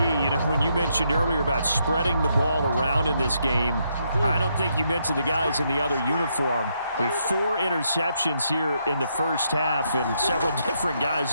know, when you mentioned earlier about spreading the ball around in this game, I don't think you mentioned the guys in the other uniform. With 4 interceptions here in the first half, and several different guys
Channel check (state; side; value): inverted; both; correlation -0.77